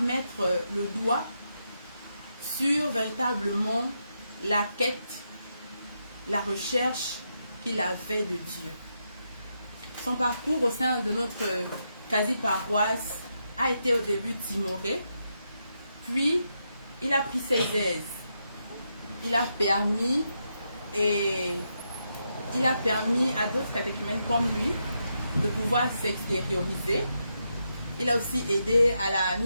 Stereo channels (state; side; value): inverted; both; correlation -0.83